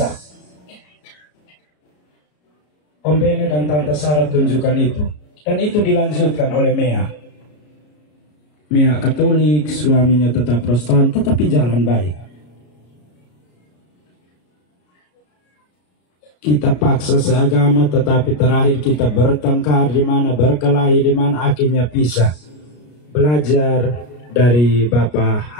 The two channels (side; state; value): right; late; 33 ms